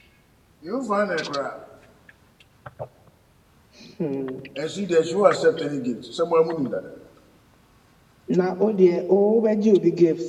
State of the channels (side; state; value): both; identical; correlation 1.00